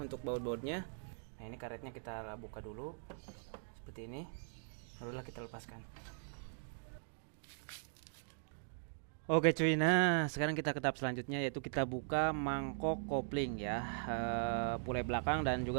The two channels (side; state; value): left; silent; digital silence